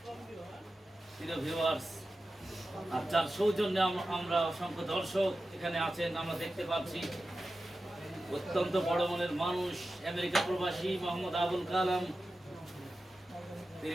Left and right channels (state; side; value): normal; both; correlation 0.93